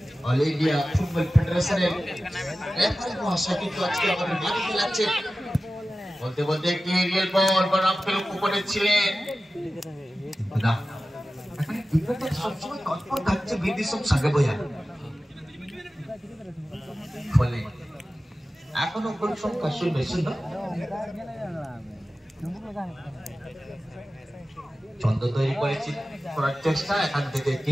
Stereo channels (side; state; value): both; normal; correlation 0.95